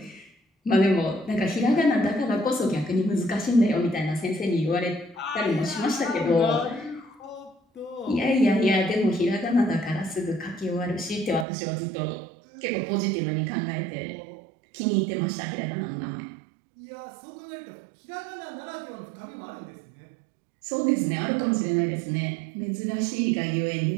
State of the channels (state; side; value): drops out; left; at 11.5 s